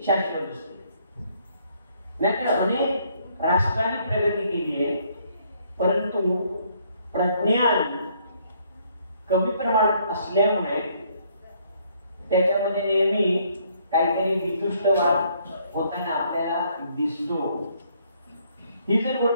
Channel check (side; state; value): both; inverted; correlation -0.67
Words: शाश्वत असते. नाहीतर अनेक राष्ट्रांनी प्रगती केली आहे, परंतु प्रज्ञान कमी प्रमाणात असल्यामुळे त्याच्यामध्ये नेहमी काहीतरी वितुष्टवाद होताना आपल्याला दिसतो. ही जर